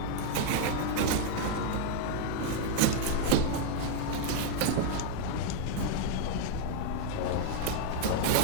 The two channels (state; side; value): different; both; correlation 0.00